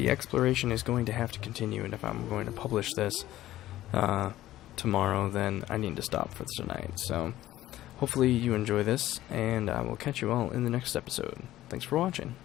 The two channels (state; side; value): quieter; right; 14.7 dB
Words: exploration is going to have to continue, and if I'm going to publish this tomorrow, then I need to stop for tonight. So hopefully you enjoy this, and I will catch you all in the next episode. Thanks for watching.